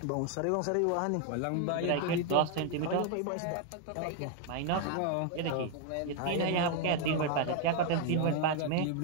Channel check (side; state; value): both; different; correlation 0.00